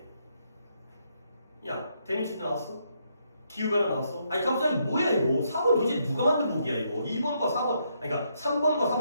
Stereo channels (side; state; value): both; inverted; correlation -0.76